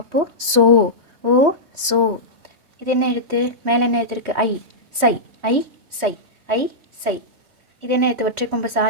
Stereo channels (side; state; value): left; late; 3.2 ms